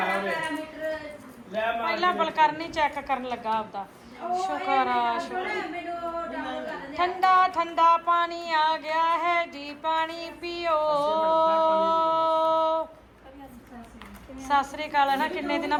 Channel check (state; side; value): identical; both; correlation 1.00